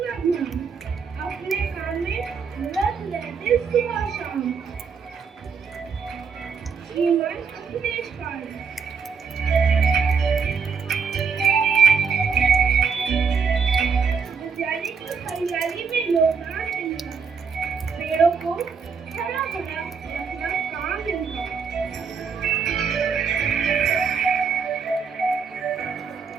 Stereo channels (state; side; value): quieter; left; 5.8 dB